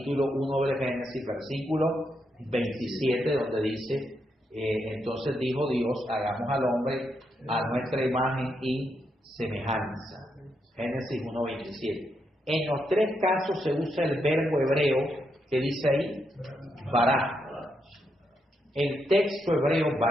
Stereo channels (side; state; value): both; normal; correlation 0.81